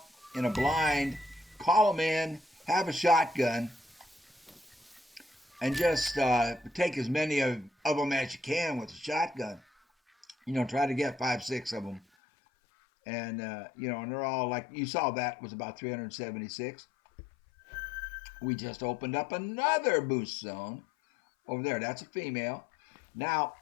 in a blind, call them in, have a shotgun, and just take as many of them as you can with a shotgun. You know, try to get 5, 6 of them. And, and they're all like, you saw that was about 376. We just opened up another moose zone over there. That's a female. Now,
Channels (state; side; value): drops out; right; at 12.0 s